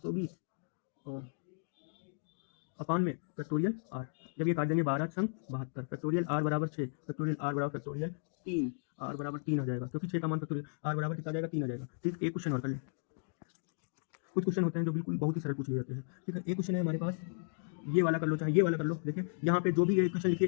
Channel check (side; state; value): right; silent; digital silence